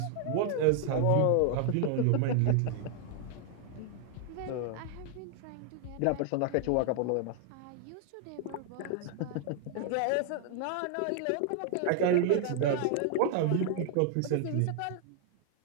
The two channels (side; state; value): both; different; correlation 0.00